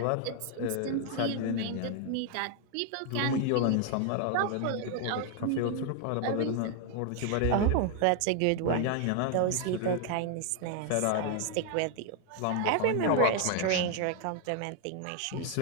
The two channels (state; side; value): different; both; correlation 0.00